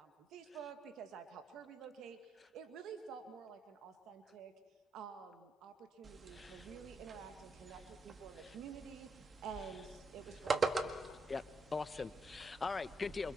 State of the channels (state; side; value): normal; both; correlation 0.80